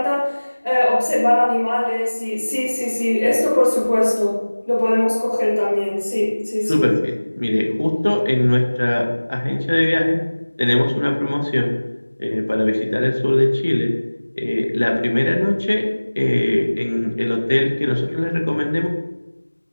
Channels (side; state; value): both; inverted; correlation -1.00